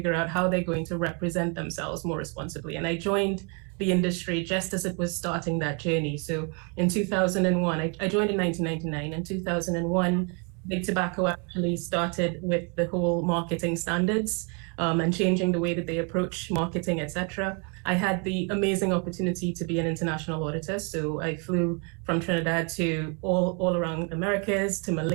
out how they're going to represent themselves more responsibly. And I joined the industry just as it was starting that journey. So in 2001, I joined in 1999. In 2001, Big Tobacco actually started with the whole marketing standards and changing the way that they approach marketing, etc. I had the amazing opportunity to be an international auditor. So I flew from Trinidad to all around Americas, to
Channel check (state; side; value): quieter; left; 35.8 dB